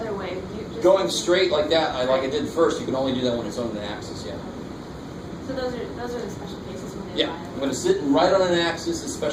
way. Going straight like that, like I did first, you can only do that when it's on the axis, yeah. So those are the special cases when they Yeah, lie. I'm going to sit right on an axis, a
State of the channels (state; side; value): identical; both; correlation 1.00